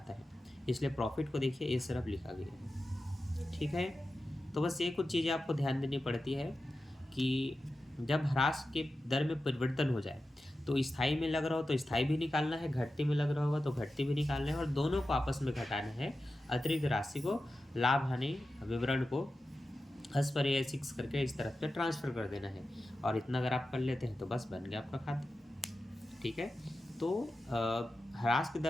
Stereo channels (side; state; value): both; normal; correlation 0.93